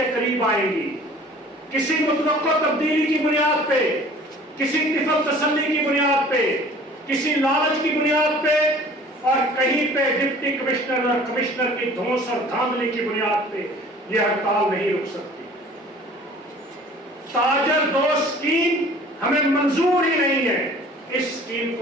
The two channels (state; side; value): normal; both; correlation 0.48